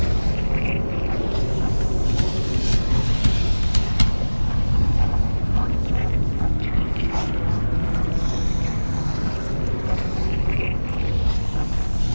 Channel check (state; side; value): inverted; both; correlation -1.00